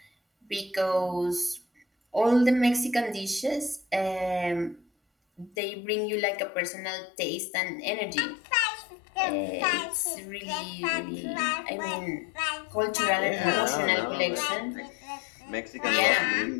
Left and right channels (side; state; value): right; drops out; at 5.6 s